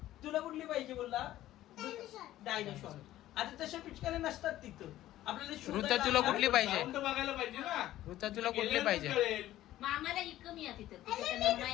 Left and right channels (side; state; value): right; quieter; 14.2 dB